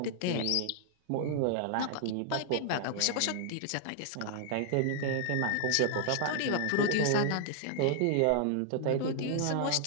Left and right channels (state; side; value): different; both; correlation 0.00